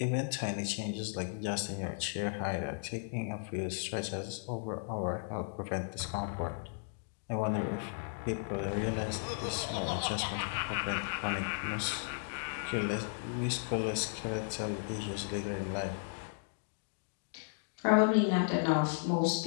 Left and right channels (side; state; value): right; silent; digital silence